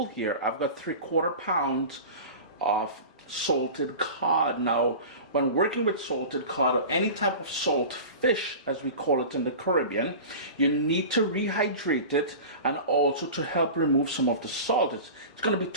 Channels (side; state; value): both; inverted; correlation -0.34